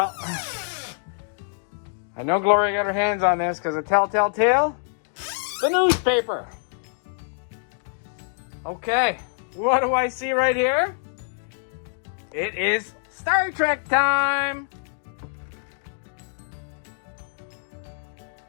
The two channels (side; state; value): right; silent; digital silence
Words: I know Gloria got her hands on this because of telltale tale. The newspaper. Okay, what do I see right here? It is Star Trek time.